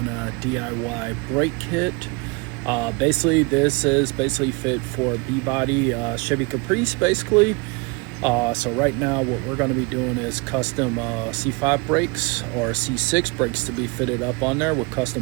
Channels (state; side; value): quieter; left; 28.5 dB